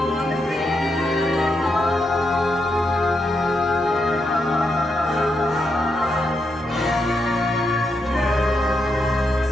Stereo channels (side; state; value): both; normal; correlation 0.82